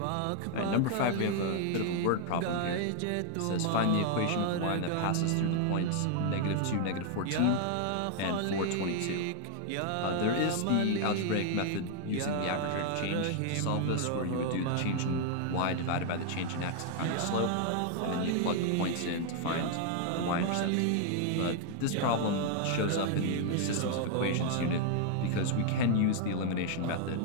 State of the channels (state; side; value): different; both; correlation 0.00